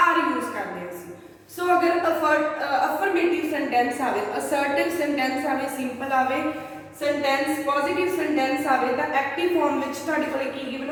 ਯੂਜ਼ ਕਰਦੇ ਹਾਂ ਅਸੀਂ। ਸੋ ਅਗਰ ਅਫਰਮੇਟਿਵ ਸੈਂਟੈਂਸ ਆਵੇ, ਅਸਰਟਿਵ ਸੈਂਟੈਂਸ ਆਵੇ, ਸਿੰਪਲ ਆਵੇ ਸੈਂਟੈਂਸ, ਪੋਜ਼ਿਟਿਵ ਸੈਂਟੈਂਸ ਆਵੇ ਤਾਂ ਐਕਟਿਵ ਫਾਰਮ ਵਿੱਚ ਤੁਹਾਡੇ ਕੋਲ ਕੀ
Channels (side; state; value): both; identical; correlation 1.00